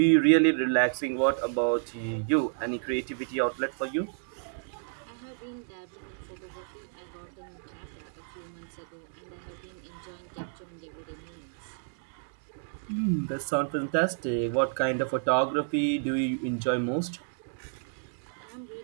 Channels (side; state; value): left; silent; digital silence